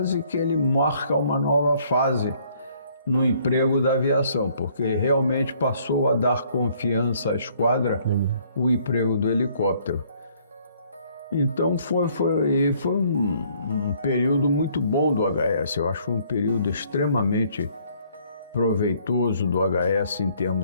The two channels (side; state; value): both; inverted; correlation -0.63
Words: que ele marca uma nova fase no emprego da aviação, porque realmente passou a dar confiança à esquadra o emprego do helicóptero. Então foi um período muito bom do HS, eu acho que foi um período extremamente proveitoso do HS em